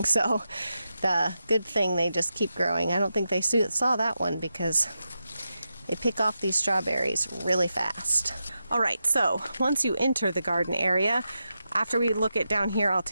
So the good thing, they just keep growing. I don't think they saw that one because they pick off these strawberries really fast. All right, so once you enter the garden area, after we look at down here, I'll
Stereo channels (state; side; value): inverted; both; correlation -0.88